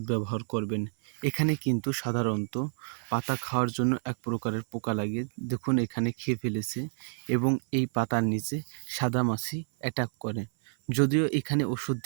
ব্যবহার করবেন? এখানে কিন্তু সাধারণত পাতা খাওয়ার জন্য এক প্রকারের পোকা লাগে। দেখুন এখানে খেয়ে ফেলেছে এবং এই পাতার নিচে সাদামাছি অ্যাটাক করে। যদিও এখানে ওষুধ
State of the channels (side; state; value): left; silent; 58 dB below the other